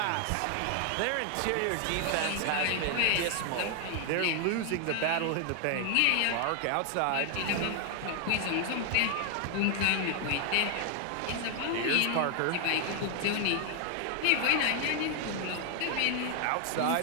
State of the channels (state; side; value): different; both; correlation 0.00